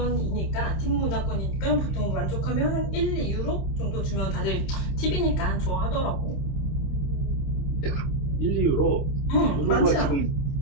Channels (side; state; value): right; late; 28 ms